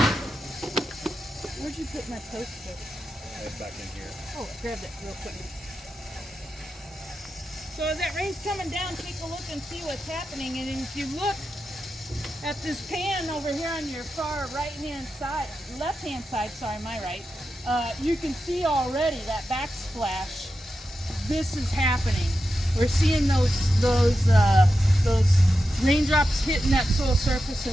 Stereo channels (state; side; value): normal; both; correlation 0.89